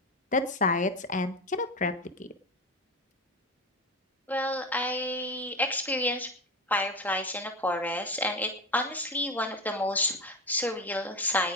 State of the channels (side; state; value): both; normal; correlation 0.21